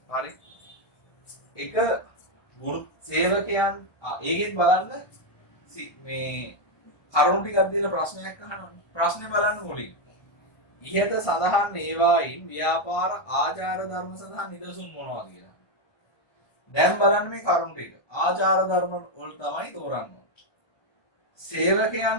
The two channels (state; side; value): late; right; 1.3 ms